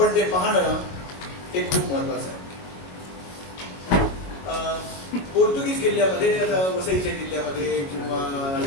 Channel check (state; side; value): late; right; 22 ms